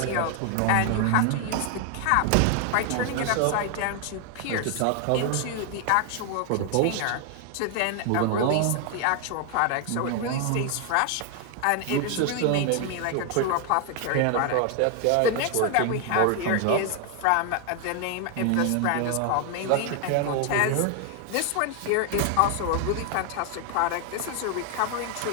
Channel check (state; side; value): different; both; correlation 0.00